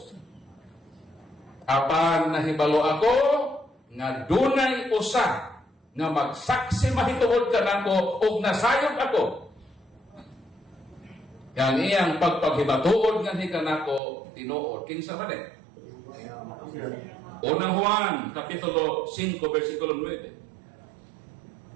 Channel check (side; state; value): left; drops out; at 14.0 s